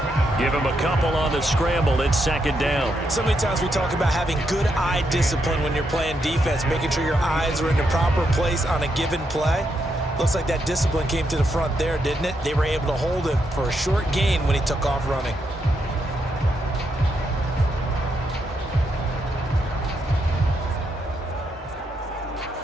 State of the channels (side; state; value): both; normal; correlation 0.80